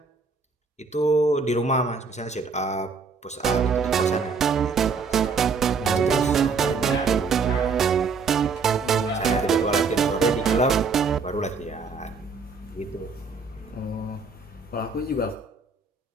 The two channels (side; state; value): left; quieter; 4.8 dB